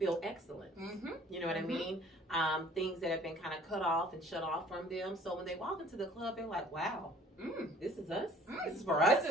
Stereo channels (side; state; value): both; normal; correlation 0.54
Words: excellent. You know what I mean? Things that have been kind of cut off and shut off from them. So when they walk into the club, they're like, wow, this is us. This is for us.